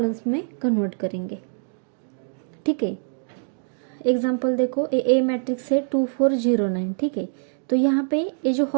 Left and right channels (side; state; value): left; silent; digital silence